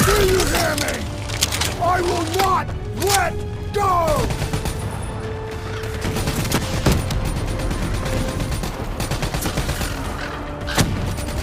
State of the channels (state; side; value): identical; both; correlation 1.00